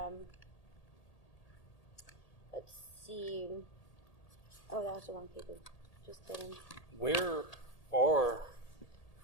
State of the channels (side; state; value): right; late; 1.8 ms